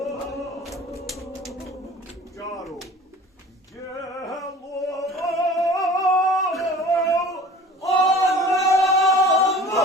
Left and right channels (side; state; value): both; normal; correlation 0.44